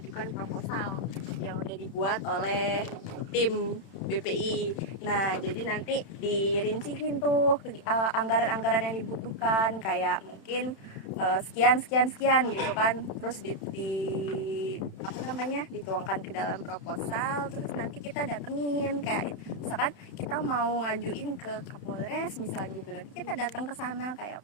proposal yang udah dibuat oleh tim BPI. Nah, jadi nanti dirinciin tuh anggaran-anggaran yang dibutuhkan, kayak mungkin sekian gitu kan, terus dituangkan ke dalam proposal, terus nanti kita datengin, kayak misalkan kita mau ngajuin ke Kapolres misalnya gitu, nanti kita datang ke sana kayak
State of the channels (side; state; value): right; late; 31 ms